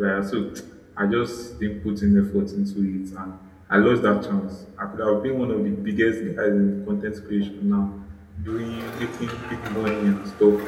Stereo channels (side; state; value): both; identical; correlation 1.00